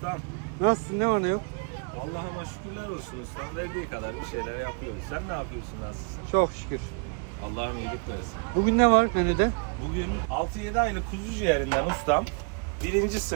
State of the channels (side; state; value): left; quieter; 37.3 dB